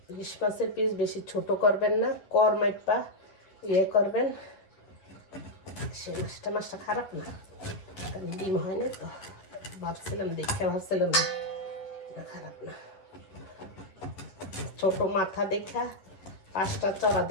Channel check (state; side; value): late; right; 11 ms